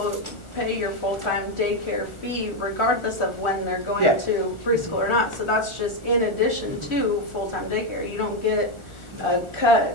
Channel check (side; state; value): right; late; 1.4 ms